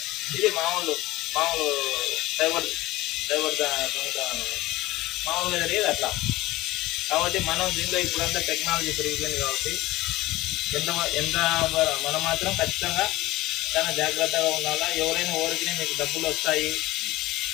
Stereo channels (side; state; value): right; quieter; 18.3 dB